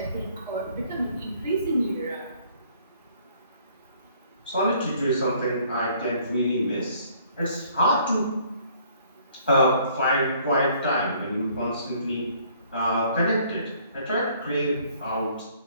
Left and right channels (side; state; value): both; inverted; correlation -0.60